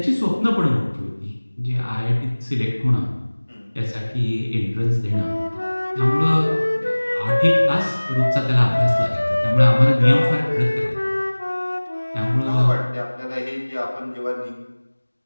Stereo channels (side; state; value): both; inverted; correlation -1.00